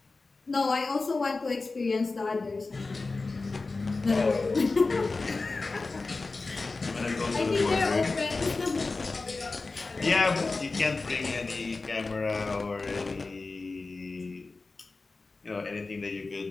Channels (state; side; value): quieter; right; 3.7 dB